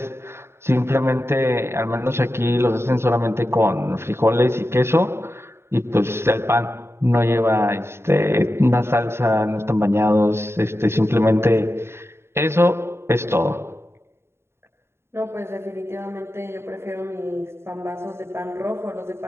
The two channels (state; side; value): late; left; 0.12 ms